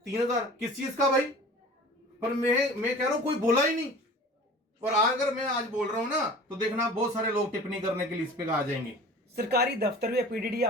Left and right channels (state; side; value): normal; both; correlation 0.42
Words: 3000, किस चीज का भाई। पर मैं कह रहा हूं कोई बोला ही नहीं, और अगर मैं आज बोल रहा हूं ना तो देखना बहुत सारे लोग टिप्पणी करने के लिए इस पे आ जाएंगे। सरकारी दफ्तर या पीडीडी